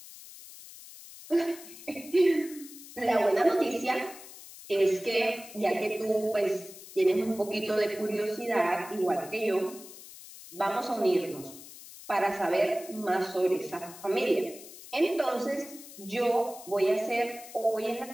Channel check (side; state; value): left; noise; hiss, 16 dB below the sound